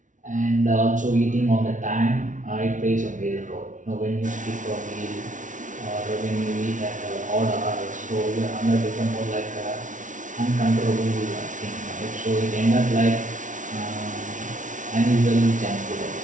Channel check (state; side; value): late; left; 0.37 ms